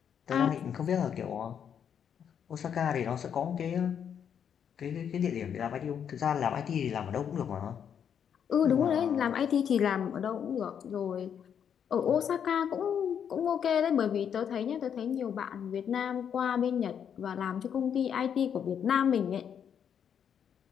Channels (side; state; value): right; quieter; 8.2 dB